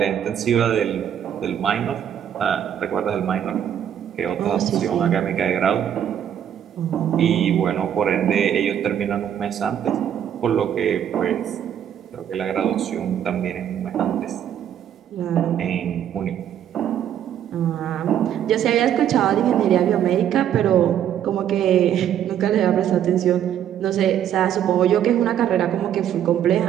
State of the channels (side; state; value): left; quieter; 9.8 dB